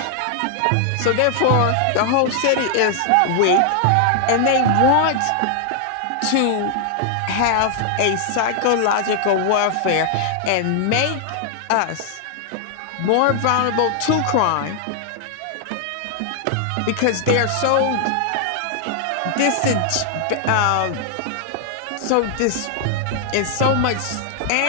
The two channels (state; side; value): different; both; correlation 0.00